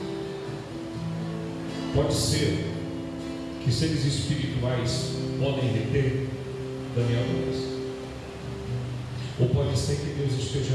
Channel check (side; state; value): both; identical; correlation 1.00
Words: Pode ser que seres espirituais podem reter Daniel 2. Ou pode ser que Deus esteja